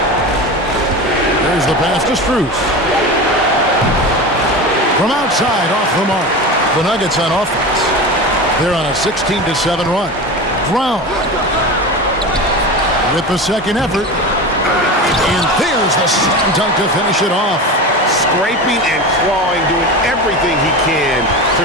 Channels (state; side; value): normal; both; correlation 0.27